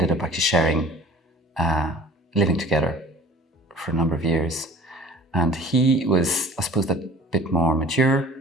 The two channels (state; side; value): normal; both; correlation 0.46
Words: up actually sharing, living together for a number of years. And he was, I suppose, a bit more mature,